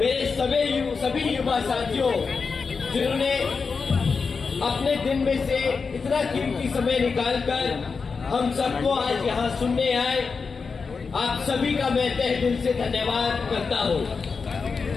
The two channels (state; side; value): quieter; right; 5.0 dB